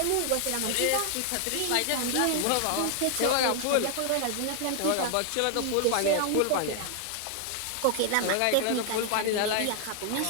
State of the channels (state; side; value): different; both; correlation 0.00